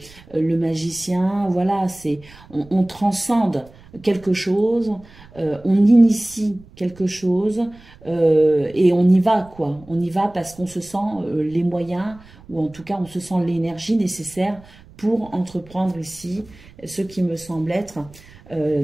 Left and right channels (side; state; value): right; noise; rumble, 23 dB below the sound